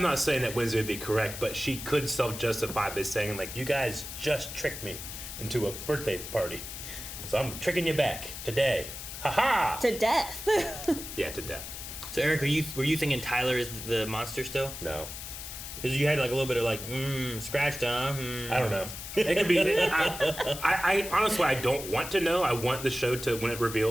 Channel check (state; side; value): noise; left; hiss, 9 dB below the sound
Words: not saying that Wednesday would be correct, but she could self-justify by saying, like, you guys just tricked me into a birthday party. So I'm tricking you back today. Ha-ha! To death. Yeah, to death. So, Eric, were you thinking Tyler is the monster still? No. Because you had like a little bit of like, scratched, huh? I don't know. It could be. I honestly, I don't want to know. I want the show to, when it